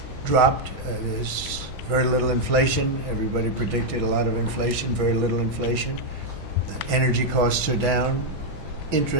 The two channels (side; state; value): both; normal; correlation 0.00